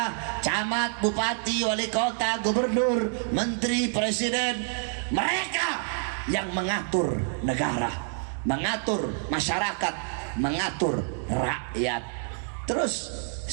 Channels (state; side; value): silent; left; 60 dB below the other